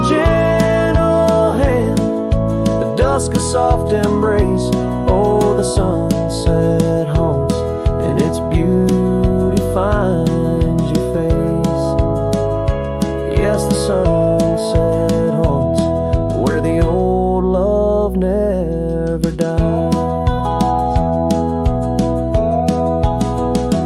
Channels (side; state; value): both; identical; correlation 1.00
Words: gentle hand, the dusk a soft embrace. Oh, the sunset haunts, and its beauty finds your face. Yes, the sunset haunts where the old love never dies.